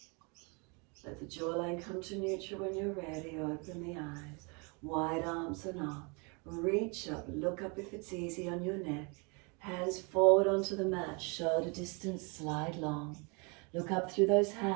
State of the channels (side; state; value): left; quieter; 31.9 dB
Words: Let the jawline come to neutral when you're ready. Open the eyes. Wide arms and up. Reach up. Look up if it's easy on your neck. Hands forward onto the mat. Shoulder distance. Slide long. Look up through those